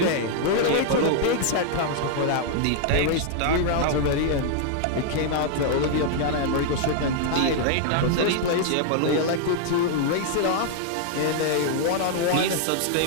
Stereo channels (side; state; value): both; different; correlation 0.00